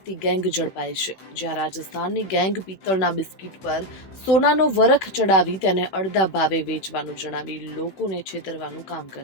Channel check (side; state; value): right; late; 16 ms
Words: ગેંગ ઝડપાઈ છે. જ્યાં રાજસ્થાનની ગેંગ પિત્તળના બિસ્કિટ પર સોનાનો વરખ ચડાવી તેને અડધા ભાવે વેચવાનું જણાવી લોકોને છેતરવાનું કામ